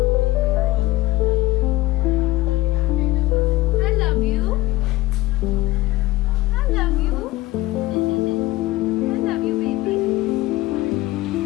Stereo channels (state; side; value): quieter; right; 17.8 dB